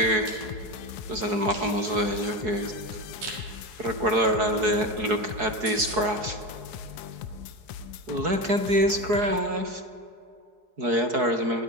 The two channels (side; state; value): left; late; 4.7 ms